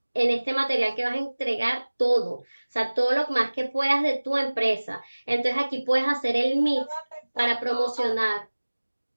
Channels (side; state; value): both; inverted; correlation -1.00